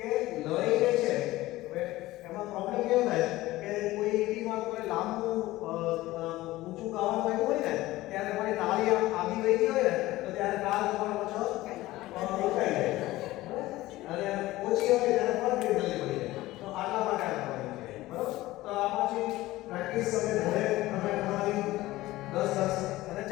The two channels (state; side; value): quieter; right; 17.5 dB